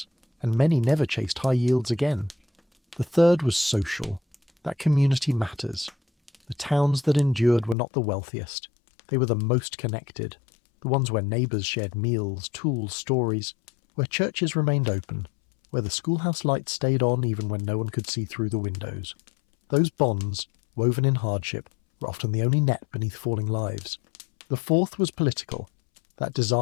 and many never chased high yields again. The third was social. That community matters. The towns that endured were not the wealthiest. They were the most connected. The ones where neighbours shared meals, tools, stories, where churches remained open, where the schoolhouse lights stayed on even when no one could see through the windows. Those bonds, woven in hardship, were often the only net beneath falling lives. The fourth was political. That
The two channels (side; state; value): right; drops out; at 7.8 s